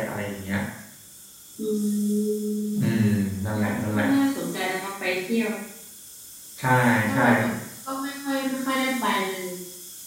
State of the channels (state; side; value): identical; both; correlation 1.00